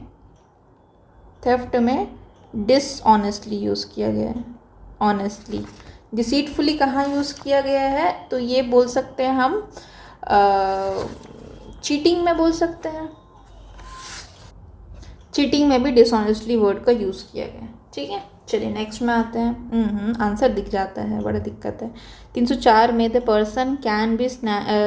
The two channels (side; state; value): both; identical; correlation 1.00